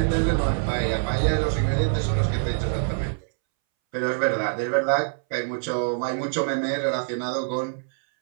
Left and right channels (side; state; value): left; silent; 62 dB below the other